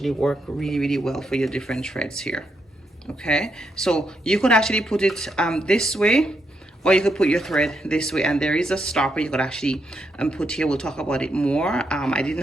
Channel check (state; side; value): normal; both; correlation 0.80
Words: work really well for your different threads here. Okay, so you could actually put it this way, or you could put your thread this way, and there is a stopper you could actually put here. We'll talk about it more. I